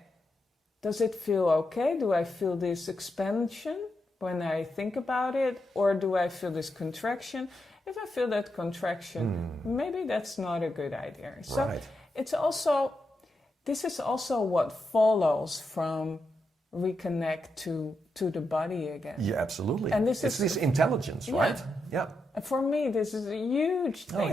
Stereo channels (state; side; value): normal; both; correlation 0.85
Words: does it feel okay? Do I feel this expansion when I think about it? Or do I feel this contraction? If I feel that contraction, maybe that's not a good idea. So it's also, this is also what follows from Reconnect to the body again. Yeah, absolutely. And this it's this intelligence, right? Yeah. And for me, this is a huge